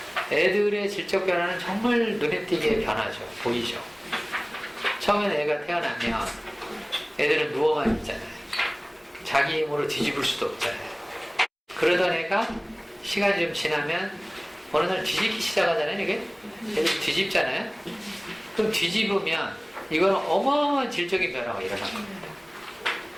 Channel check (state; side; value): identical; both; correlation 1.00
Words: 애들의 질적 변화는 정말 눈에 띄게 변하죠. 보이죠. 처음에는 애가 태어나면 애들은 누워만 있잖아요. 자기 힘으로 뒤집을 수도 없잖아요. 그러던 애가 시간이 좀 지나면 어느 날 뒤집기 시작하잖아요. 이게 애들 뒤집잖아요. 그럼 뒤집으면 이거는 어마어마한 질적인 변화가 일어난 겁니다.